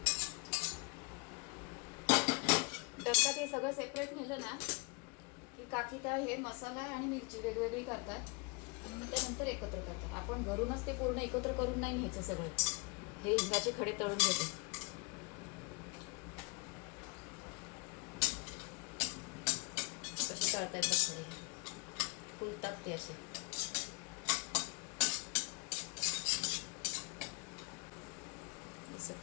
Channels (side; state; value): right; quieter; 31.0 dB